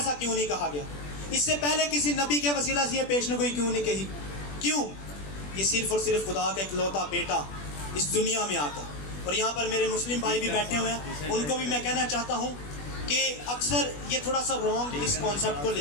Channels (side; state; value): right; late; 21 ms